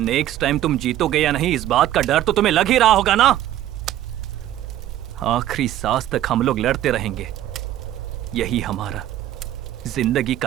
टाइम तुम जीतोगे या नहीं इस बात का डर तो तुम्हें लग ही रहा होगा ना। आखिरी सांस तक हम लोग लड़ते रहेंगे, यही हमारा जिंदगी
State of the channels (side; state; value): left; quieter; 12.8 dB